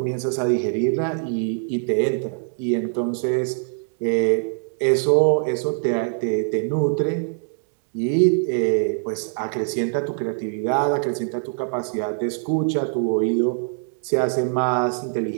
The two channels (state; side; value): silent; left; digital silence